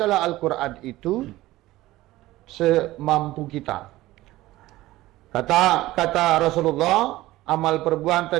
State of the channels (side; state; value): left; quieter; 17.2 dB